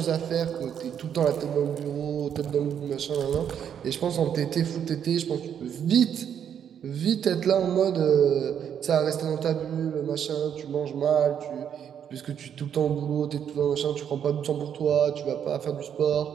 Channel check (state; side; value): quieter; left; 8.6 dB